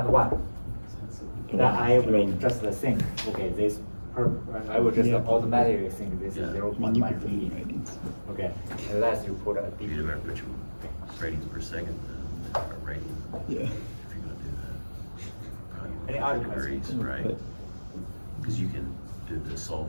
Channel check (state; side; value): inverted; both; correlation -1.00